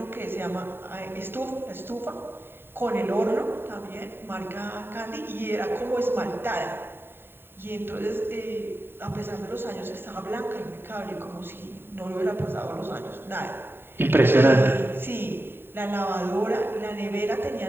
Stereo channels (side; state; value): left; late; 0.11 ms